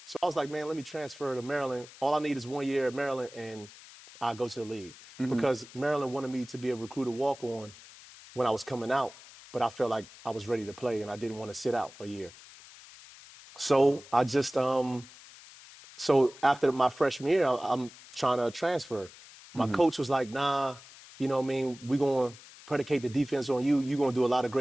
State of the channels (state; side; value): noise; left; hiss, 19 dB below the sound